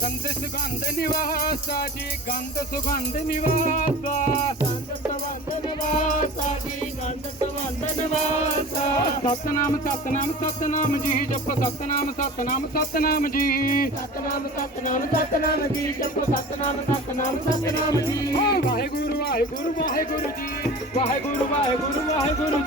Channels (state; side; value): normal; both; correlation 0.38